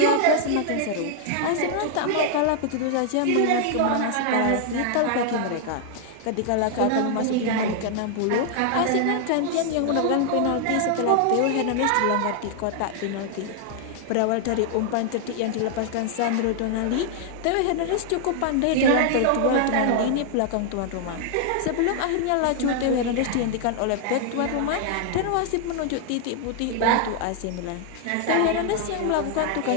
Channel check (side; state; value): both; different; correlation 0.00